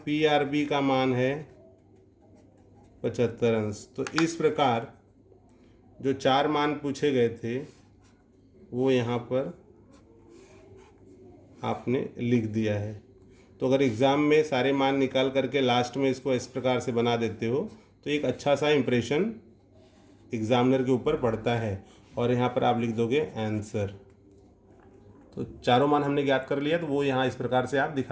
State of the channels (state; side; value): identical; both; correlation 1.00